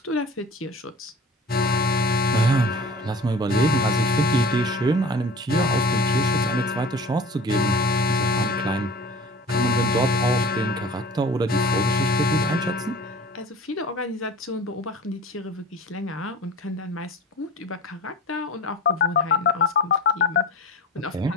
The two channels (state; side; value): normal; both; correlation 0.41